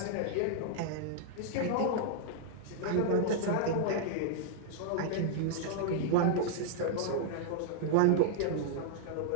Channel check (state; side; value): different; both; correlation -0.01